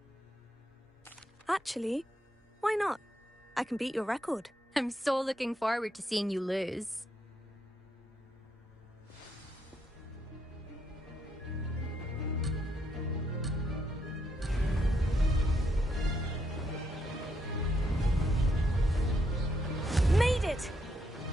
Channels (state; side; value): normal; both; correlation 0.77